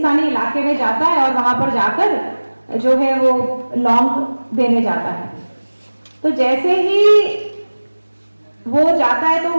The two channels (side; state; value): both; inverted; correlation -1.00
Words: इलाके में जाता है और वहां पर जाकर जो है वो लॉन्ग देने जाता है। तो जैसे ही वो जाता है तो